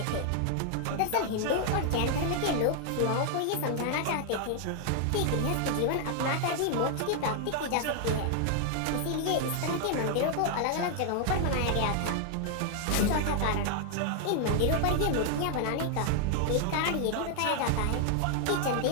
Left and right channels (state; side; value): different; both; correlation 0.00